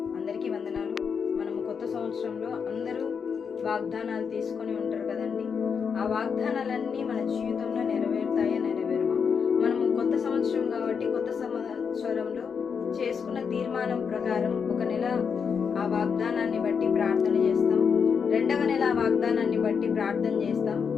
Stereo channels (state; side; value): quieter; right; 6.3 dB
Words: అందరికీ వందనాలు. మనము కొత్త సంవత్సరంలో అందరూ వాగ్దానాలు తీసుకొని ఉంటారు కదండి. ఆ వాగ్దానాలన్నీ మన జీవితంలో నెరవేరుతాయా నెరవేరువా? మనము కొత్త సంవత్సరం కాబట్టి కొత్త సంవత్సరంలో చేసుకున్న తీర్మానం ప్రకారం ఒక నెల ఆ వాగ్దానాన్ని బట్టి ప్రార్థన చేస్తాం, రెండవ నెల ఆ వాగ్దానాన్ని బట్టి ప్రార్థన చేస్తాం.